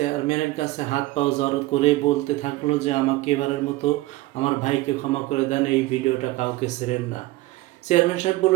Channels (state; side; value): quieter; left; 18.8 dB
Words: কাছে হাত পাও জড়ো করে বলতে থাকলো যে আমাকে এবারের মতো আমার ভাইকে ক্ষমা করে দেন, এই ভিডিওটা কাউকে ছেড়েন না। চেয়ারম্যান সাহেব